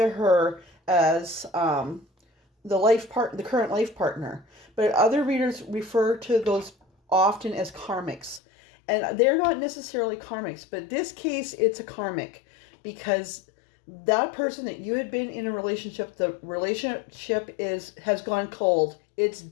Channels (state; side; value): drops out; right; at 8.4 s